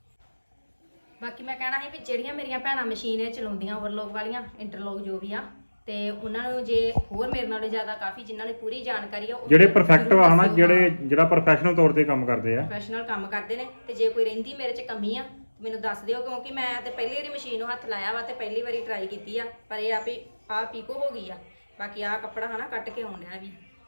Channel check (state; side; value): inverted; both; correlation -1.00